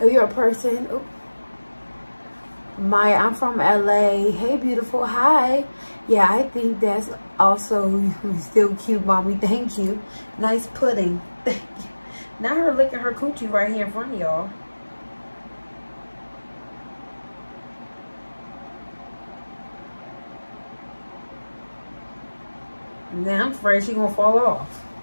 Oh, you're a person. Oh. Maya, I'm from LA. Hey, beautiful. Hi. Yeah, I think that's also still cute, mommy. Thank you. Nice pudding. Thank you. Now her licking her coochie right here in front of y'all. Now I'm afraid she's gonna fall off.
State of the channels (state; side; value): inverted; both; correlation -1.00